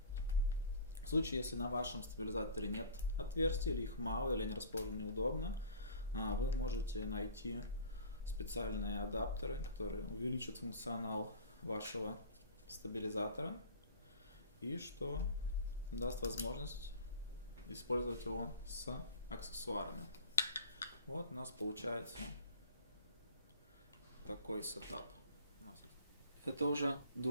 В случае, если на вашем стабилизаторе нет отверстий, или их мало, или они расположены неудобно, вы можете найти специальные адаптеры, которые увеличат функционал вашего стабилизатора и что даст возможность использовать его с аксессуарами. Вот у нас получается такой сетап. Это уже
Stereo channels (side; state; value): both; inverted; correlation -0.42